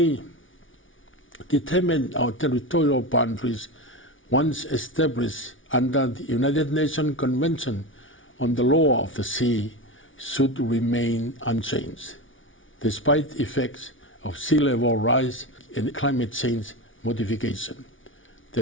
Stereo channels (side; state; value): right; late; 0.57 ms